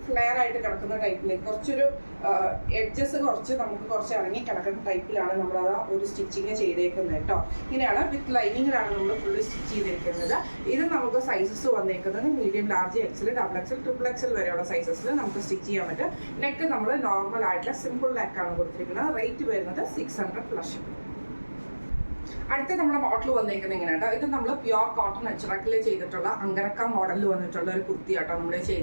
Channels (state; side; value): inverted; both; correlation -1.00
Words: ഫ്ലെയർ ആയിട്ട് കിടക്കുന്ന ടൈപ്പിലേക്ക് കുറച്ചൊരു എഡ്ജസ് കുറച്ച് ഇറങ്ങി കിടക്കുന്ന ടൈപ്പിലാണ് നമ്മൾ ആ ഒരു സ്റ്റിച്ചിങ് ചെയ്തേക്കുന്നത് കേട്ടോ. ഇങ്ങനെയാണ് വിത്ത് ലൈനിങ്ങിലാണ് നമ്മൾ ഫുള്ള് സ്റ്റിച്ച് ചെയ്തിരിക്കുന്നത്. ഇത് നമുക്ക് സൈസസ് വന്നേക്കുന്നത് medium, large, XL, double XL, triple XL വരെയുള്ള സൈസസിൽ നമുക്ക് സ്റ്റിച്ച് ചെയ്യാൻ പറ്റും. നെക്ക് നമ്മൾ നോർമൽ ആയിട്ടുള്ള സിമ്പിൾ നെക്കാണ് കൊടുത്തിരിക്കുന്നത്. റേറ്റ് വരുന്നത് 600 പ്ലസ്. അടുത്ത നമ്മുടെ മോഡൽ വന്നേക്കുന്നത് ഇങ്ങനെ കേട്ടോ. ഇത് നമ്മൾ പ്യുവർ കോട്ടൺ അച്ചറക്കിൽ ചെയ്തിട്ടുള്ള അങ്കരക്ക മോഡലിൽ വന്നിട്ടുള്ള ഒരു കുർത്തി ആട്ടോ നമ്മൾ